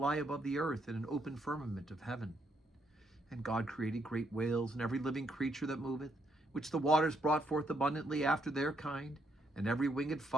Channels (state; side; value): normal; both; correlation 0.75